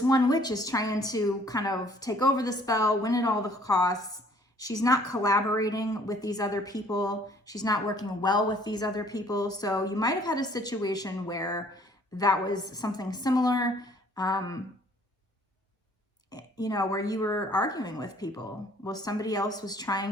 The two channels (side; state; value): both; normal; correlation 0.58